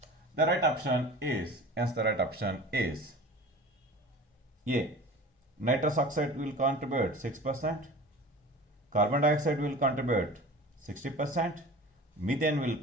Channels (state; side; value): normal; both; correlation 0.38